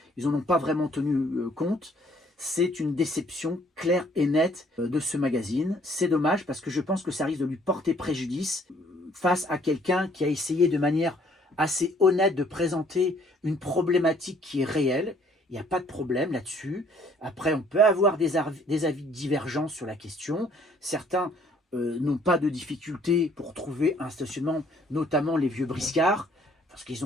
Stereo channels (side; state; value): both; normal; correlation 0.61